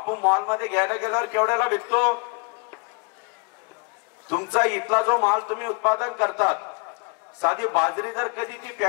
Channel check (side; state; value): right; quieter; 35.4 dB